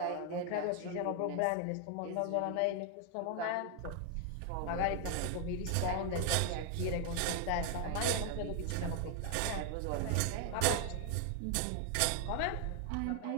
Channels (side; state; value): both; different; correlation 0.00